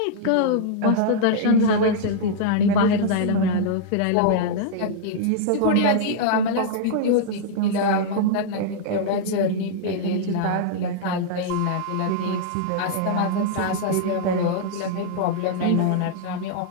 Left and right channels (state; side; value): different; both; correlation -0.01